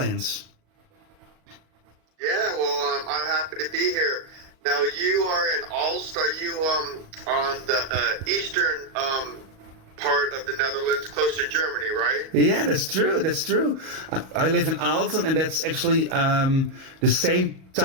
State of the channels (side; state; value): left; late; 38 ms